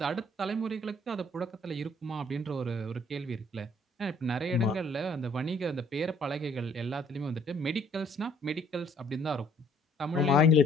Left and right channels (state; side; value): normal; both; correlation 0.61